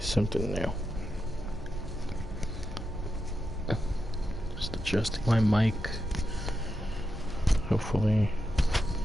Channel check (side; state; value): both; normal; correlation 0.87